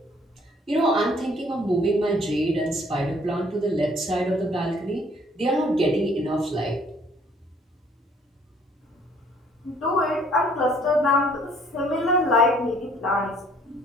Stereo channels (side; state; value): both; normal; correlation 0.60